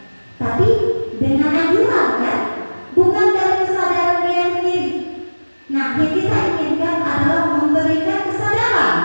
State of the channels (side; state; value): both; inverted; correlation -1.00